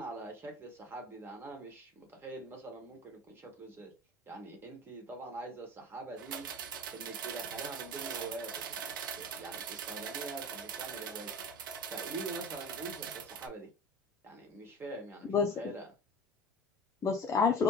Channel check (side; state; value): both; normal; correlation 0.36